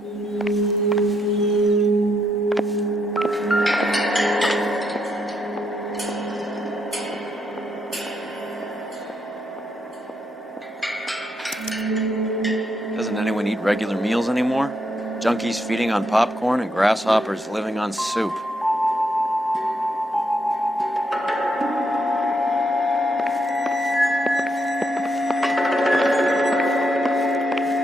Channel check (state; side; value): normal; both; correlation 0.78